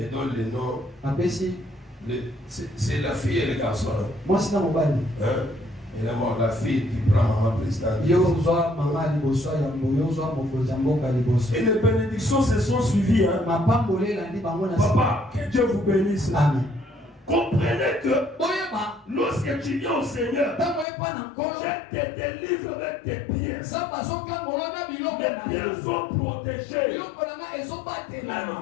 donne les noms. C'est la fille et le garçon. Moi, c'est dans mon bal. Et d'abord la fille qui prend maman présidente. Et les bénédictions se sont suivies. Hein? Papa, que Dieu vous bénisse. Amen. Comprenez que lorsque tu viens au Seigneur, je te délivre avec tes pieds. Mes pieds sont protégés. Même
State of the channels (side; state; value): right; drops out; at 20.9 s